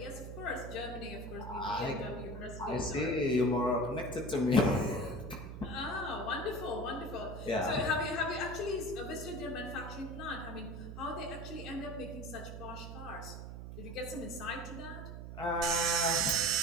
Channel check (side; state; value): right; noise; hum, 9 dB below the sound